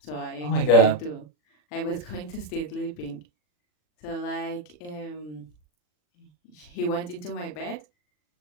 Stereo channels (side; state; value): right; late; 40 ms